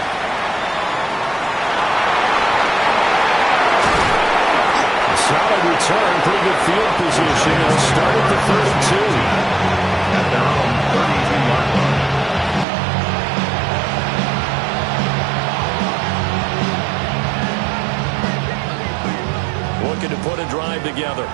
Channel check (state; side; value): drops out; left; at 12.7 s